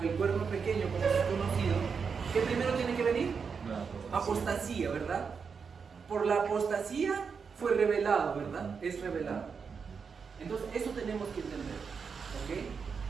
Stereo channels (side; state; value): left; quieter; 5.8 dB